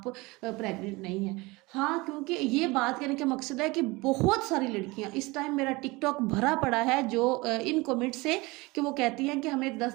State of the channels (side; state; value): left; quieter; 23.4 dB